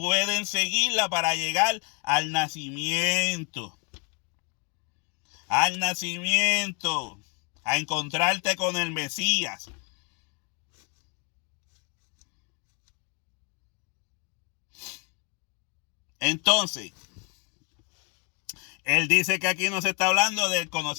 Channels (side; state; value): right; quieter; 31.7 dB